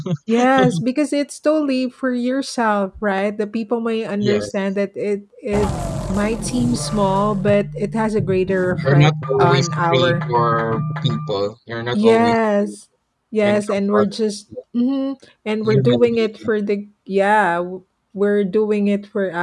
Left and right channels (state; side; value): identical; both; correlation 1.00